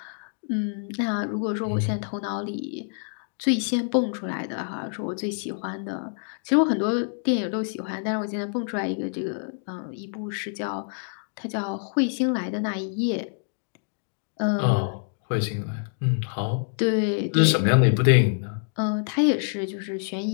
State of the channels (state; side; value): silent; right; digital silence